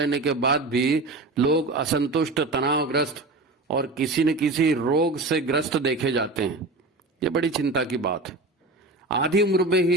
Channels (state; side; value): quieter; left; 3.1 dB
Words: के बाद भी लोग असंतुष्ट, तनावग्रस्त और किसी न किसी रोग से ग्रस्त देखे जाते हैं। ये बड़ी चिंता की बात है। आधी उम्र में